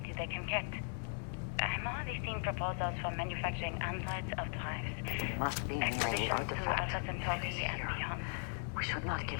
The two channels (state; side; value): silent; right; 52 dB below the other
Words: they can get. I'm already seeing proposals for manufacturing androids of drives. Must be near the Expeditions to artifact. Alpha Centauri It is and here. beyond. We should not